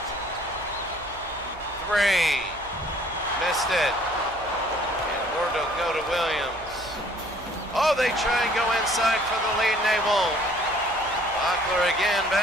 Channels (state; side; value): noise; right; hum, 19 dB below the sound